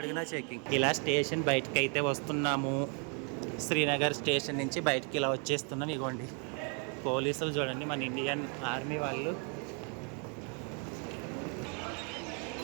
చెకింగ్. ఇలా స్టేషన్ బయటకు అయితే వస్తున్నాము. శ్రీనగర్ స్టేషన్ నుంచి బయటికి ఇలా వచ్చేస్తున్నాం. ఇగోండి పోలీసులు చూడండి, మన ఇండియన్ ఆర్మీ వాళ్ళు.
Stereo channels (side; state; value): left; quieter; 38.8 dB